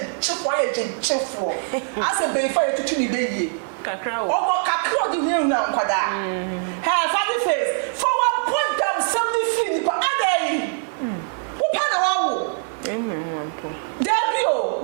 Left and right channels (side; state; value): left; silent; digital silence